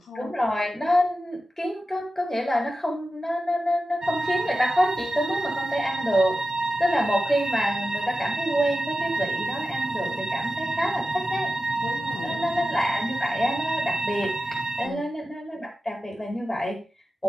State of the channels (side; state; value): both; normal; correlation 0.93